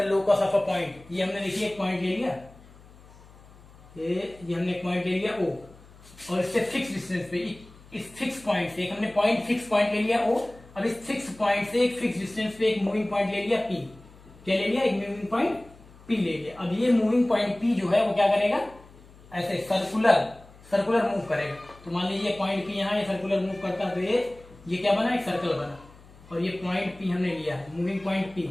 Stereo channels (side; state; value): left; noise; hum, 23 dB below the sound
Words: locus of a point, ये हमने देखिए एक पॉइंट ले लिया, ये हमने एक पॉइंट ले लिया ओ, और इससे फिक्स डिस्टेंस पे, इस फिक्स पॉइंट से एक हमने पॉइंट फिक्स पॉइंट ले लिया ओ, अब इस फिक्स पॉइंट से एक फिक्स डिस्टेंस पे एक मूविंग पॉइंट ले लिया पी। क्या ले लिया, एक मूविंग पॉइंट पी ले लिया। अब ये मूविंग पॉइंट पी जो है वो क्या करेगा, ऐसे सर्कुलर मूव करेगा। तो मान लीजिए पॉइंट पी यहाँ, ये सर्कुलर मूव करता है तो ये क्या बना, एक सर्कल बना, और ये पॉइंट पी हमने लिया है, मूविंग पॉइंट पी।